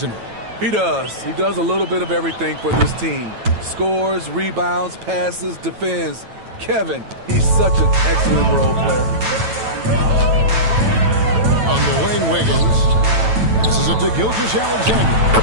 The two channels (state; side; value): late; left; 9.1 ms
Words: he? He does. He does a little bit of everything for this team. Scores, rebounds, passes, defends. Kevin, he's such an excellent role player. On the wing, Wiggins. This is it to Gilgeous-Alexander.